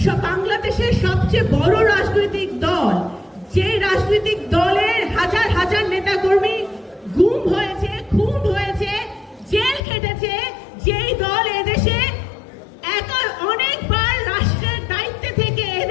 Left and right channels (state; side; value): drops out; right; at 9.8 s